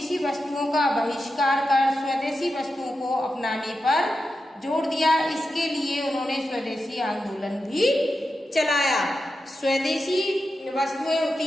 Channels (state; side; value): normal; both; correlation 0.90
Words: वस्तुओं का बहिष्कार कर स्वदेशी वस्तुओं को अपनाने पर जोर दिया। इसके लिए उन्होंने स्वदेशी आंदोलन भी चलाया। स्वदेशी वस्तुएं